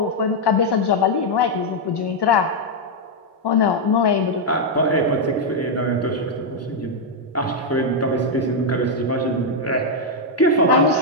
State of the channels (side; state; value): both; normal; correlation -0.01